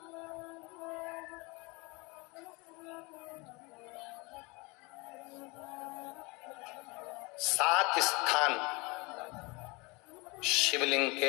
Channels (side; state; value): right; quieter; 26.9 dB